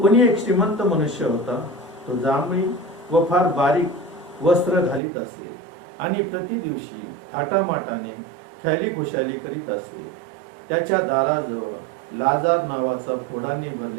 एक श्रीमंत मनुष्य होता. तो जांभळी व फार बारीक वस्त्र घालीत असे आणि प्रति दिवशी थाटामाटाने ख्याली खुशाली करीत असे. त्याच्या दाराजवळ लाजार नावाचा फोडाने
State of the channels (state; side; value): drops out; left; at 5.0 s